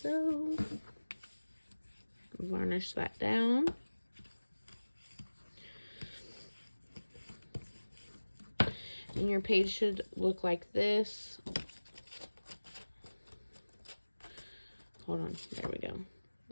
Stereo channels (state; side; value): inverted; both; correlation -1.00